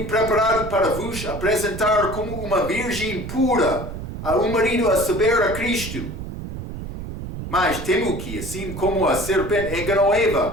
preparado para vos apresentar como uma virgem pura a um marido, a saber, a Cristo. Mas temo que, assim como a serpente enganou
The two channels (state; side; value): noise; right; rumble, 8 dB below the sound